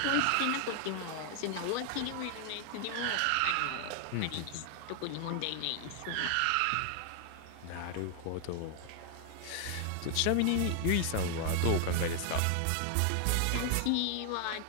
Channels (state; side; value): different; both; correlation 0.00